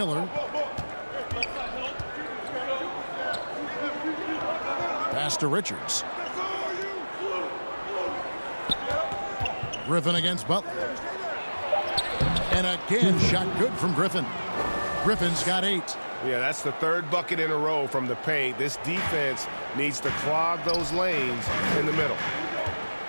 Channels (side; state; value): both; inverted; correlation -1.00